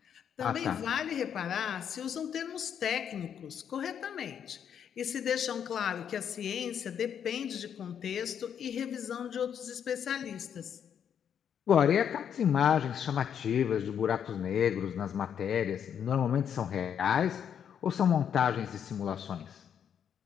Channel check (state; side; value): quieter; right; 8.4 dB